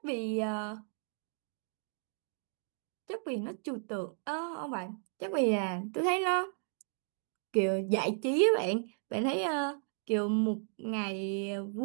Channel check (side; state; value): left; silent; 55 dB below the other